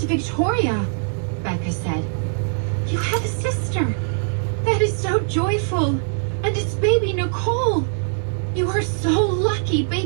Victoria, Becca said. You have a sister. That is so joyful. And it's baby Nicole. You are so lucky.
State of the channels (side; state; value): left; silent; digital silence